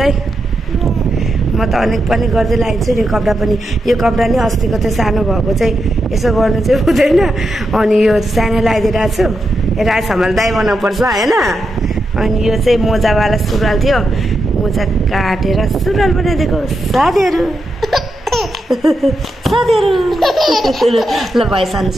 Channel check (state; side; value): normal; both; correlation 0.86